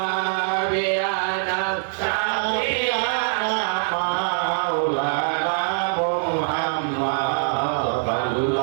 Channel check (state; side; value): silent; left; 63 dB below the other